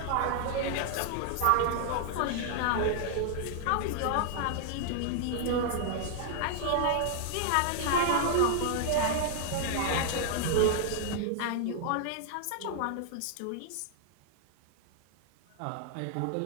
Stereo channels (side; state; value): both; different; correlation 0.00